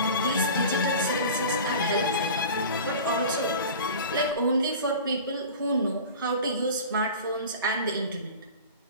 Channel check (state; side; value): inverted; both; correlation -0.37